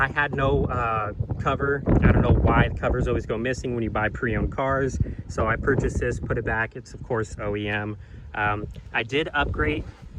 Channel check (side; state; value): both; identical; correlation 1.00